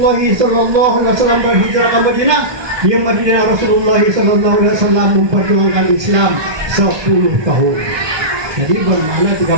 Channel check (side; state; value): left; late; 1.2 ms